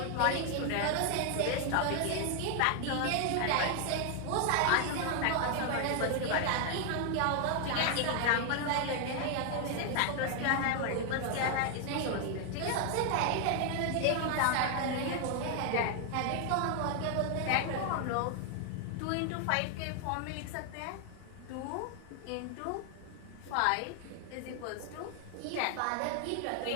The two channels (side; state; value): both; different; correlation 0.00